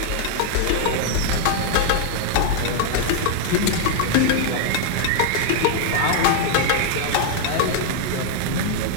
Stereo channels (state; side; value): different; both; correlation 0.00